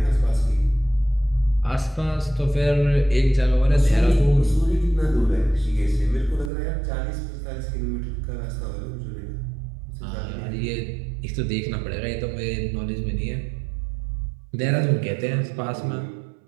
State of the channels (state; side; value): drops out; left; at 6.5 s